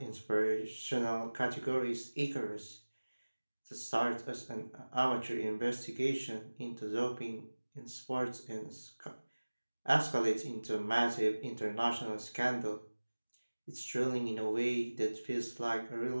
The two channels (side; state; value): both; inverted; correlation -1.00